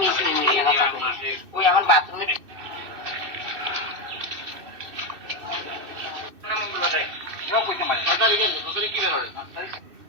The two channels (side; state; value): left; late; 2.6 ms